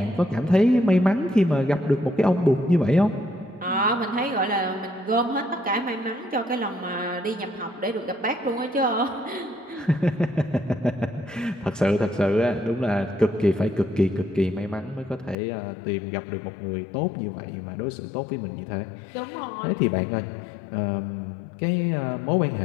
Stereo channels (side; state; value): right; drops out; at 15.4 s